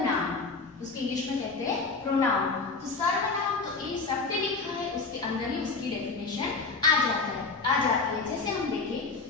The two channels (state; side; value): quieter; right; 4.2 dB